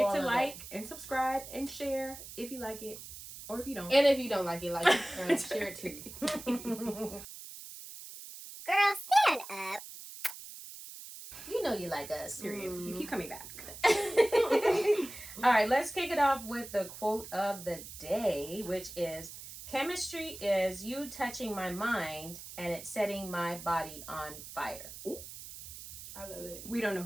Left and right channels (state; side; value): noise; right; hiss, 13 dB below the sound